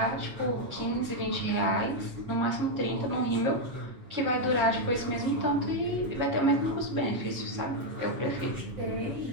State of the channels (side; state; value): left; late; 7.2 ms